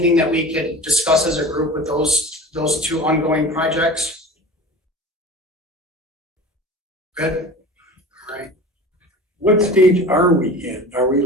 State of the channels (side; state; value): both; normal; correlation 0.36